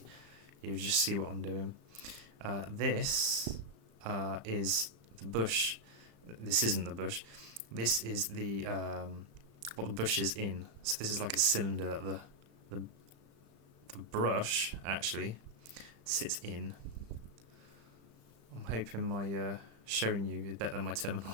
you just see what I'm doing. This is the bush. This isn't the bush. This is the what the bush is in. So this is like a cylinder that the brush actually sits in. I'm hoping my showing you is better than my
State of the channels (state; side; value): late; left; 35 ms